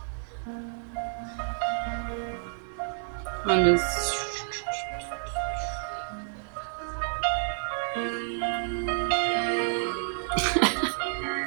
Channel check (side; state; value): left; silent; digital silence